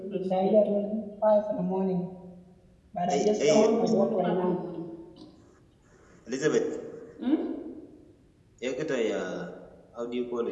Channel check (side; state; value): both; identical; correlation 1.00